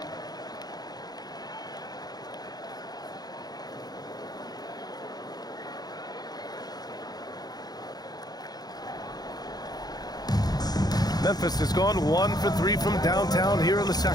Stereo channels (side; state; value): right; late; 0.19 ms